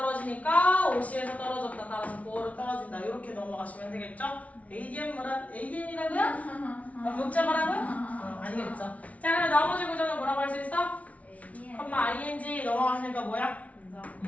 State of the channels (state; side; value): late; right; 0.067 ms